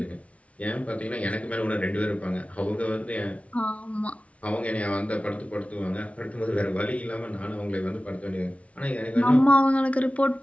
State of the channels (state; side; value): late; right; 0.064 ms